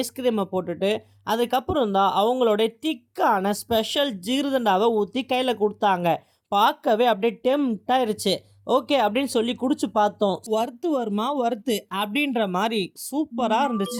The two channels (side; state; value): both; identical; correlation 1.00